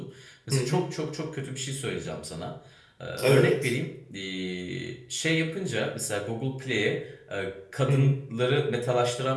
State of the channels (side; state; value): both; identical; correlation 1.00